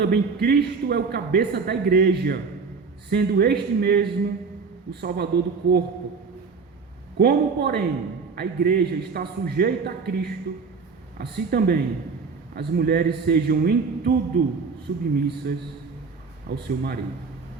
Cristo é o cabeça da igreja, sendo este mesmo o Salvador do corpo. Como, porém, a igreja está sujeita a Cristo, assim também as mulheres sejam em tudo submissas ao seu marido.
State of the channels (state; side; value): quieter; left; 5.0 dB